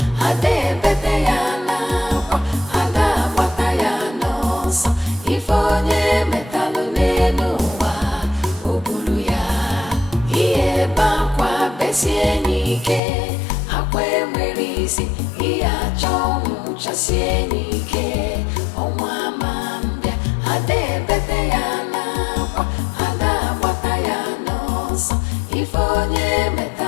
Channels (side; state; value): right; drops out; at 13.0 s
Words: ade bete yana kwa ada bata yana so ifonye metalo nenuwa obulu ya iye bakwa besienike akwe merisi iya chongu chasienike omwa mambia ade bete yana kwa ada bata yana so ifonye